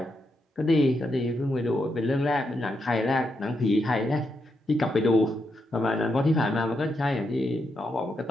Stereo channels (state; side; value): normal; both; correlation 0.82